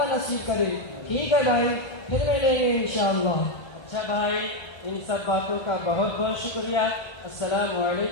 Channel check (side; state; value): right; late; 1.3 ms